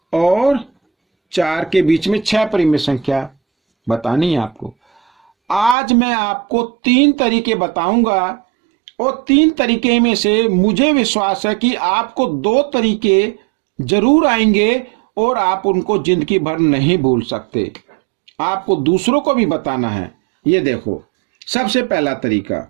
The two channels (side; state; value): left; drops out; at 5.8 s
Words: और 4 के बीच में 6 परिमेय संख्या बतानी है आपको। आज मैं आपको 3 तरीके बताऊंगा और 3 तरीके में से मुझे विश्वास है कि आपको 2 तरीके जरूर आएंगे और आप उनको जिंदगी भर नहीं भूल सकते। आपको दूसरों को भी बताना है। ये देखो, सबसे पहला तरीका,